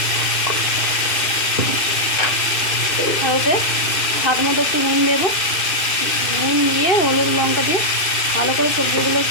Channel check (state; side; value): late; right; 2.6 ms